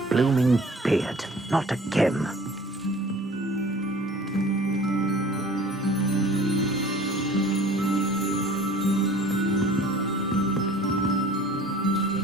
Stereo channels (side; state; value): both; normal; correlation 0.47